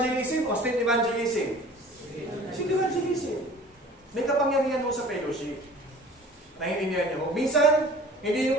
o street evangelism? Street evangelism. May kapangyarihan mo sa fellowship. Naiintindihan niyo mo. Minsan,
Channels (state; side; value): normal; both; correlation 0.46